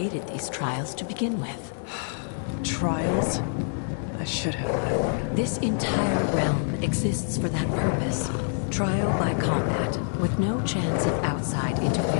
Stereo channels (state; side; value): silent; right; digital silence